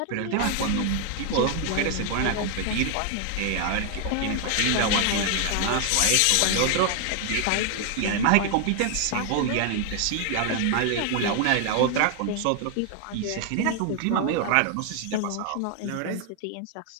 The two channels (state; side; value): different; both; correlation 0.00